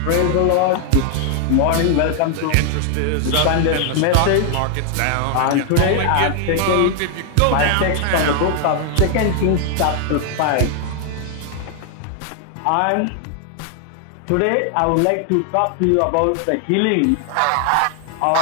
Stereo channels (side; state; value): both; different; correlation 0.00